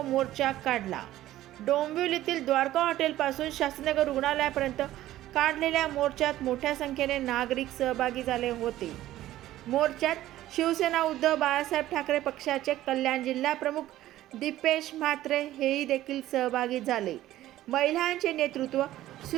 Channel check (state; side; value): quieter; left; 14.4 dB